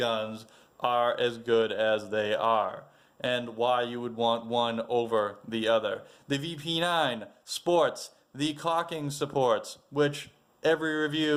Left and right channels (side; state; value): both; identical; correlation 1.00